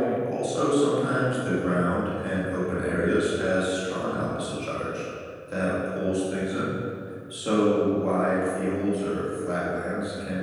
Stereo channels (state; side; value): identical; both; correlation 1.00